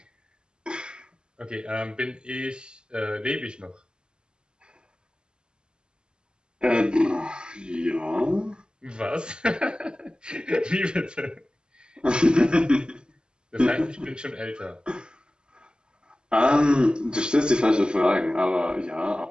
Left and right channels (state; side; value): late; left; 0.049 ms